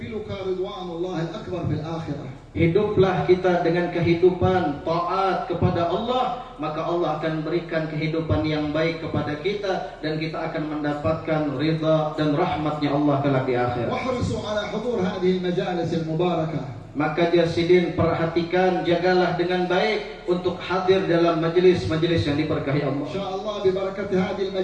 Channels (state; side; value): identical; both; correlation 1.00